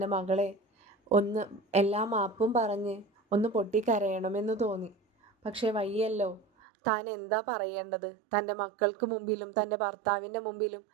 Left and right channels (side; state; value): left; drops out; at 6.5 s